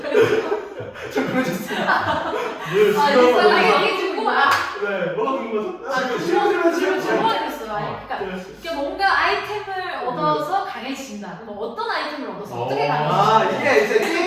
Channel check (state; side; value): identical; both; correlation 1.00